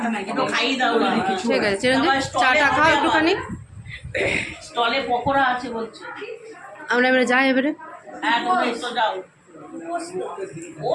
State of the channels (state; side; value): identical; both; correlation 1.00